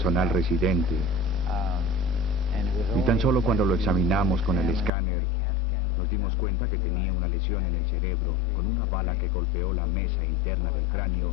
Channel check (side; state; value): right; drops out; at 4.9 s